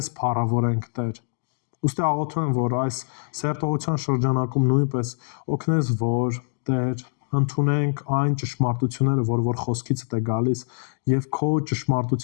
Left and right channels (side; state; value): right; silent; digital silence